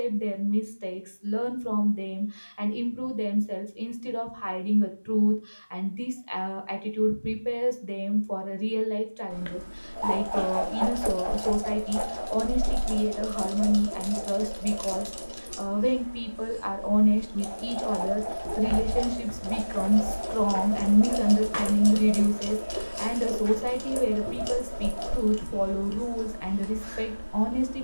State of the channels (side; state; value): both; inverted; correlation -1.00